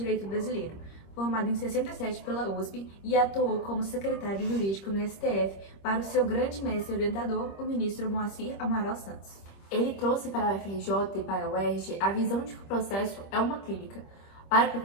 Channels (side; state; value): right; late; 25 ms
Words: brasileiro, formado em 67 pela USP e atuou como secretário jurídico no STF para o seu grande mestre orientador, o ministro Moacir Amaral Santos. Ele trouxe para a UFRJ e para a UERJ a visão de que o processo é uma clínica. Para o